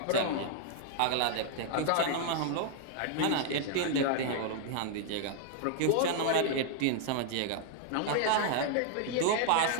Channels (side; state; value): both; different; correlation 0.00